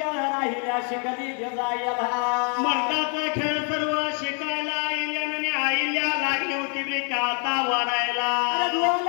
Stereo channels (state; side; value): quieter; right; 39.4 dB